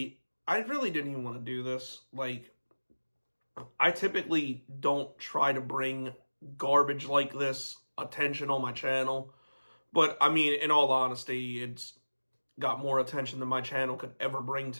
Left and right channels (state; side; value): inverted; both; correlation -1.00